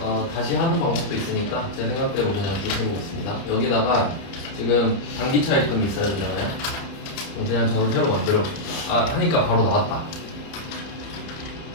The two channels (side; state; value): right; late; 30 ms